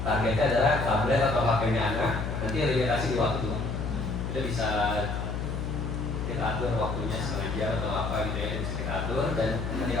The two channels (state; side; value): noise; left; hum, 3 dB below the sound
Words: targetnya adalah tablet atau HP-nya anak, nanti limitasi di waktu. Kita bisa kita atur waktunya setengah jam atau apa gitu ya, bisa kita atur, dan